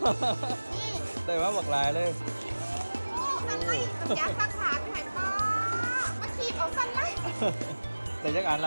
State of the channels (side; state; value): both; inverted; correlation -1.00